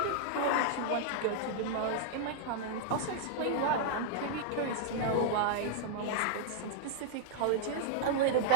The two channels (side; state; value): both; different; correlation -0.01